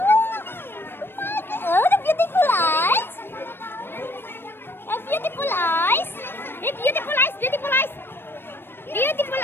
Oh, the beautiful eyes. Beautiful eyes. Beautiful eyes, beautiful eyes. Beautiful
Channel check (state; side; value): late; right; 0.10 ms